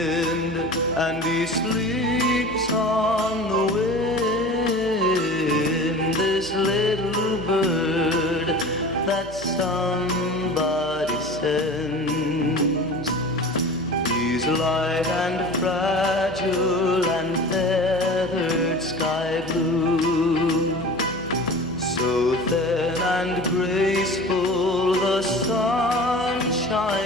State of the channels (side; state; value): left; noise; hum, 21 dB below the sound